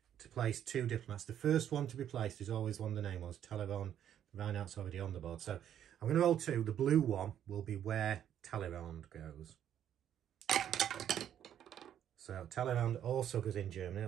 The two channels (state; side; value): quieter; left; 10.1 dB